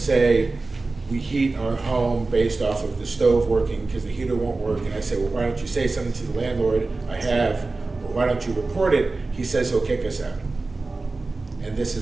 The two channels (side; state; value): left; quieter; 3.5 dB